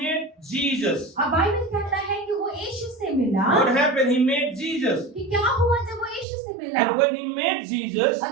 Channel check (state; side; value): drops out; left; at 6.2 s